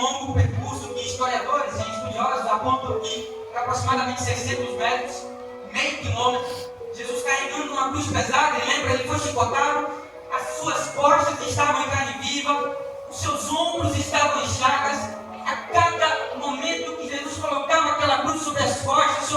longo percurso que historiadores e estudiosos apontam que é aproximadamente 600 metros, meio quilômetro. Jesus carregando uma cruz pesada, lembra, ele foi chicotado, as suas costas estavam em carne viva, os seus ombros estavam em chagas. A cada momento que Jesus colocava aquela cruz sobre as costas,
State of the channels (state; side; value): identical; both; correlation 1.00